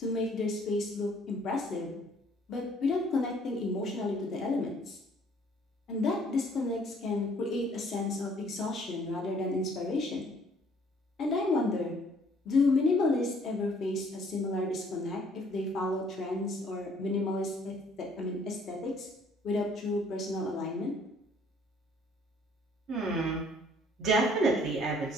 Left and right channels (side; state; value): both; normal; correlation 0.60